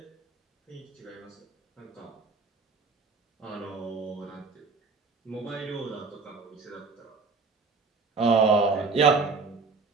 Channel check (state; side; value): quieter; left; 4.4 dB